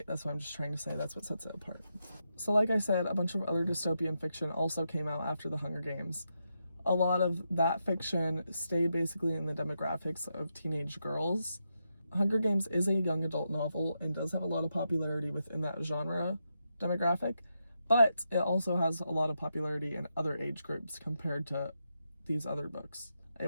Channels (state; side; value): inverted; both; correlation -0.84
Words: That's what I'm just trying to say. That's what sets it apart. So like I said, a bunch of other dystopian fiction also came out after the Hunger Games. A lot of that fiction stayed basically in the demographics of teenage girls. Hunger Games is a young adult novel and does have a lot of popularity within that genre demographic, but it also has a lot of popularity in other age groups compared to these other books.